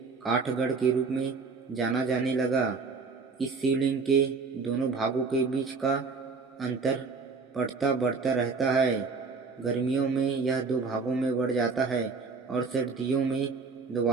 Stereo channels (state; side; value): quieter; left; 4.7 dB